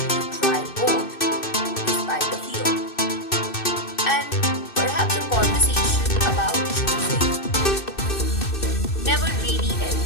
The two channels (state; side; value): late; right; 2.6 ms